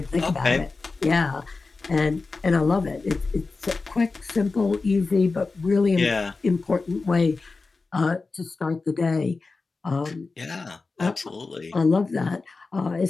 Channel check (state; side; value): quieter; right; 4.0 dB